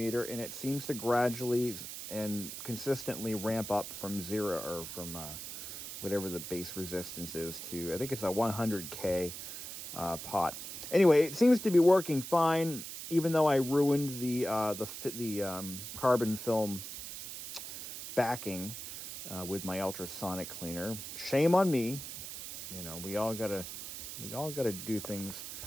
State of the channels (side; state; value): right; noise; hiss, 9 dB below the sound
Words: and it seems to gradually and consistently ramp up from zero, or from whatever the base resistance is, to I think it's a 100K pot. Anyway, it seems to be working fine, even though I ruined the carbon film backing with my ultrasonic cleaner. Shame on me. You know, we all gotta do things